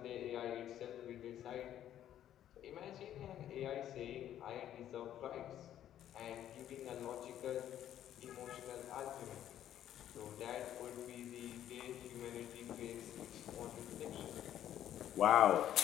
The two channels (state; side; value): quieter; right; 11.2 dB